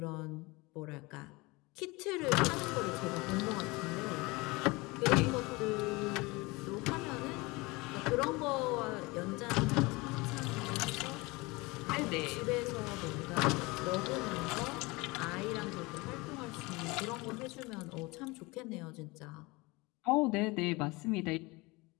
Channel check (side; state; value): right; quieter; 24.0 dB